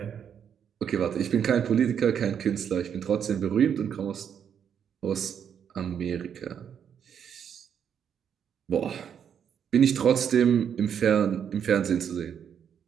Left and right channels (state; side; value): quieter; left; 8.2 dB